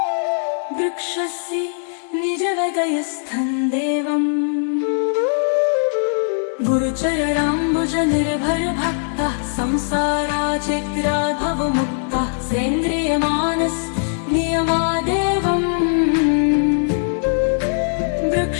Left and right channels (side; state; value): right; silent; digital silence